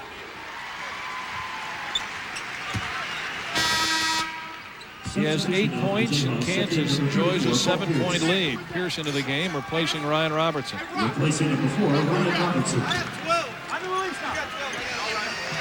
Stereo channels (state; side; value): identical; both; correlation 1.00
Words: He has 8 points, and Kansas enjoys a 7-point lead. Pierce into the game, replacing Ryan Robertson. Replacing number 4, Ryan Robertson.